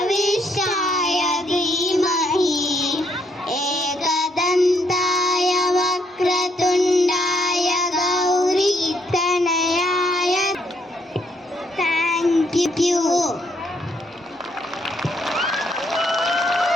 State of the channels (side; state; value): both; normal; correlation 0.72